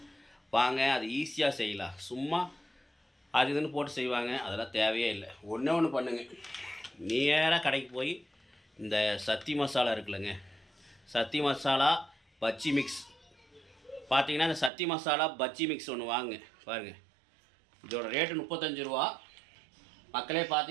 வாங்க. அது ஈஸியாக செய்யலாம். சும்மா அது இதுன்னு போட்டு செய்வாங்க, அதெல்லாம் தேவையே இல்லை. ஒன்று பண்ணுங்க, நேராக கடைக்கு போய் இந்த சத்தி மசாலா இருக்குல்லங்க, சத்தி மசாலா பஜ்ஜி மிக்ஸ் பார்த்தீங்கன்னா, இந்த சத்தி மசாலா பஜ்ஜி மிக்ஸ் ஒன்று வாங்க பாருங்கள். இதோட ரேட்டு 35 ரூபா. மக்களே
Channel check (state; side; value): drops out; left; at 14.7 s